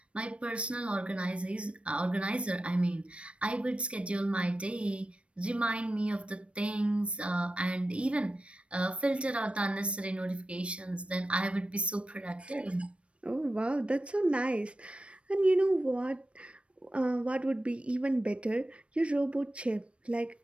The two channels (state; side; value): late; left; 0.061 ms